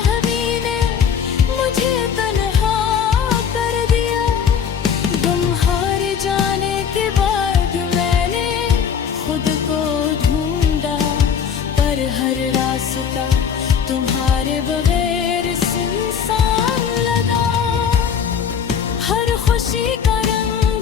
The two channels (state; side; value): quieter; right; 7.4 dB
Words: ने मुझे तन्हा कर दिया। तुम्हारे जाने के बाद मैंने खुद को ढूंढा, पर हर रास्ता तुम्हारे बगैर सुनसान लगा। हर खुशी का